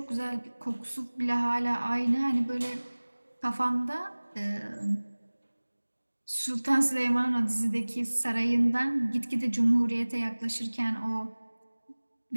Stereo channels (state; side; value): inverted; both; correlation -1.00